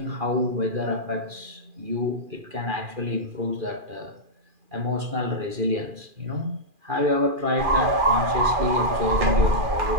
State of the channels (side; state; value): left; late; 2.4 ms